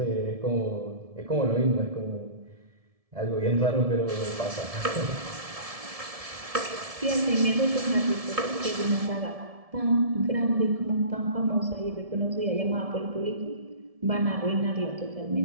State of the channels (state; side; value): late; left; 1.7 ms